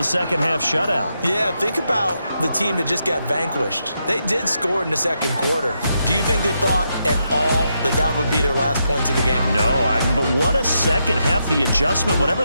second half shutout. Yeah, think about the team that just got vanquished. They did score in the 2nd quarter. Do you think they thought at all that that would be their last points of the game? No, but what a second half. The adjustment, whatever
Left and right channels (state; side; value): inverted; both; correlation -0.82